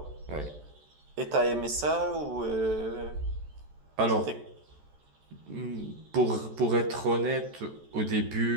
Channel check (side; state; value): left; late; 14 ms